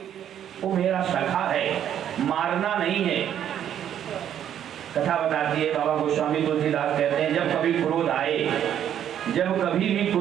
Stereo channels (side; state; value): left; quieter; 10.0 dB